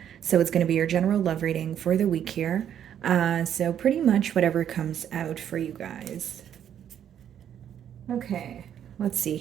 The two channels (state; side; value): quieter; left; 9.6 dB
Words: So it's going to be your general love reading for the week here. So pretty much whatever comes out for you guys. Okay, let's see